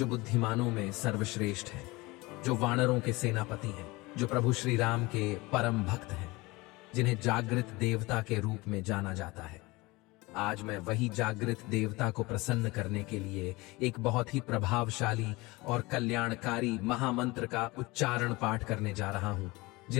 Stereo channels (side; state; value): right; quieter; 22.7 dB